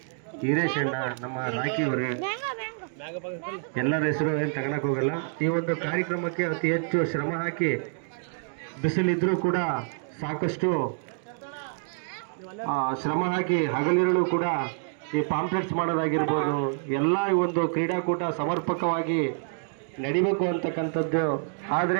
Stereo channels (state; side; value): silent; left; 60 dB below the other